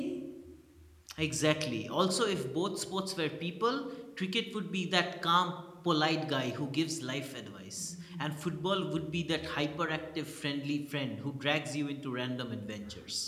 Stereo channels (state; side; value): identical; both; correlation 1.00